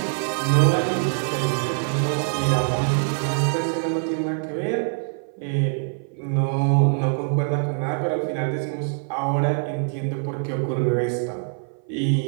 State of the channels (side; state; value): left; silent; 56 dB below the other